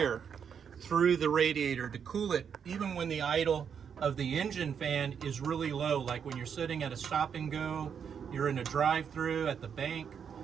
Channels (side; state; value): left; quieter; 7.3 dB